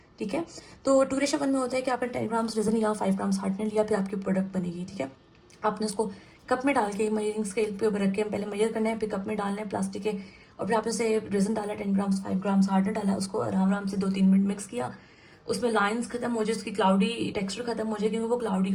ठीक है। तो 2:1 में होता है कि आपने 10 ग्राम्स रीजन लिया, 5 ग्राम्स हार्डनर लिया, फिर आपकी प्रोडक्ट बनेगी, ठीक है। आपने उसको कप में डाल के मेजरिंग स्केल पे ऊपर रख के पहले मेजर करना है, फिर कप में डालना है प्लास्टिक के, और फिर आपने उसे रीजन डाला 10 ग्राम्स, 5 ग्राम्स हार्डनर डाला, उसको आराम आराम से 2-3 मिनट मिक्स किया। उसमें लाइंस खत्म हो जाए, उसकी क्लाउडी टेक्सचर खत्म हो जाए, क्योंकि वो क्लाउडी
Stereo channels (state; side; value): identical; both; correlation 1.00